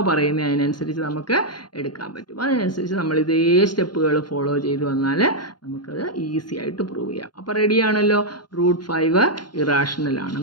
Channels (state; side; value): late; right; 0.71 ms